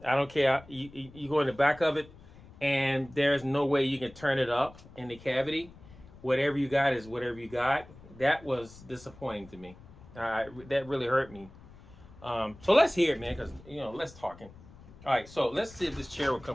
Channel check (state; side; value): noise; left; rumble, 21 dB below the sound